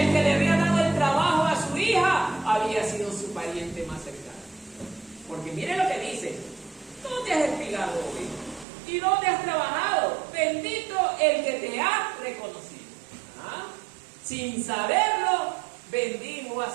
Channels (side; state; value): left; drops out; at 8.7 s